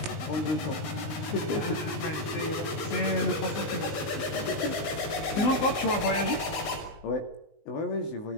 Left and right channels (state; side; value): late; right; 19 ms